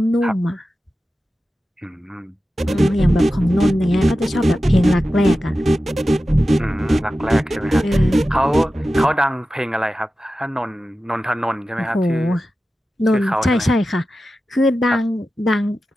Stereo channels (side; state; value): both; normal; correlation 0.93